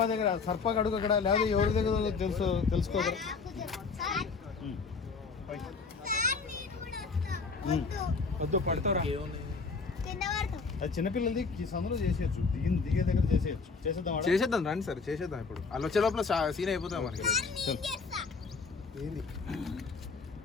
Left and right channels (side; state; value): right; quieter; 4.7 dB